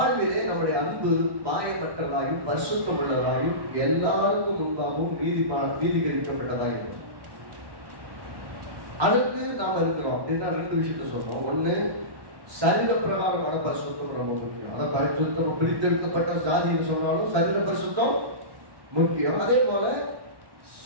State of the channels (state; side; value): late; left; 1.1 ms